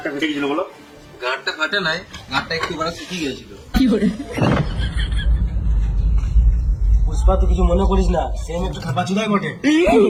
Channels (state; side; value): identical; both; correlation 1.00